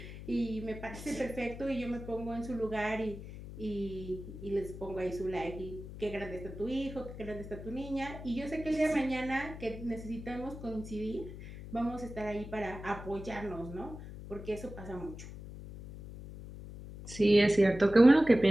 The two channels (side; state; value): left; noise; hum, 12 dB below the sound